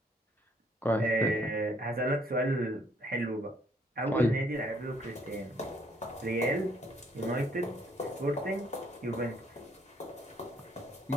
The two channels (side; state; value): both; normal; correlation 0.65